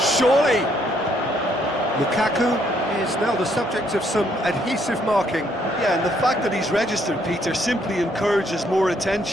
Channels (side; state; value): both; normal; correlation 0.69